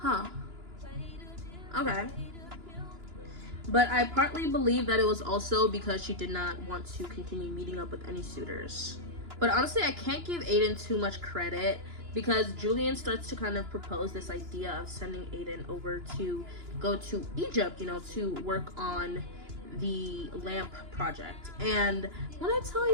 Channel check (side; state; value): left; late; 2.9 ms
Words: Okay. But I partly believe that it was also because she did not want to continue meeting up with any suitors. But honestly, I can't give Aiden too much credit, because Julian starts to kind of propose this idea of sending Aiden over to go to Egypt, you know, to work on the lamp project. And when I tell